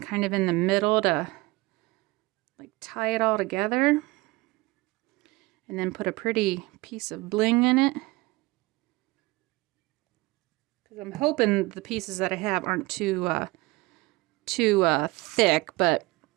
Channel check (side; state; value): left; quieter; 21.9 dB